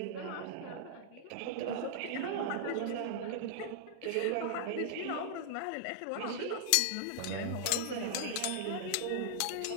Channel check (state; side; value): different; both; correlation -0.01